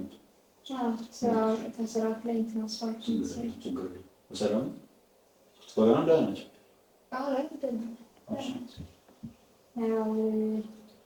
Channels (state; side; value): identical; both; correlation 1.00